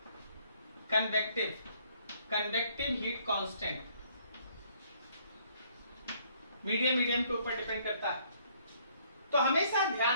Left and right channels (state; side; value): inverted; both; correlation -0.64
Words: convective heat constant. Medium के ऊपर डिपेंड करता है। तो हमेशा